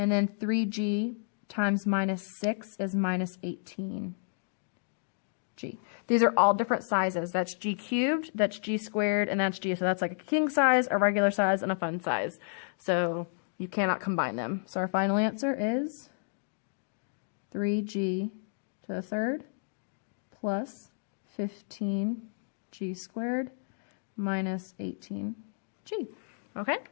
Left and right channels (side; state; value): right; silent; digital silence